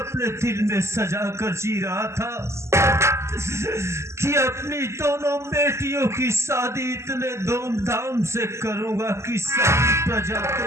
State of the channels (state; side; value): late; left; 0.13 ms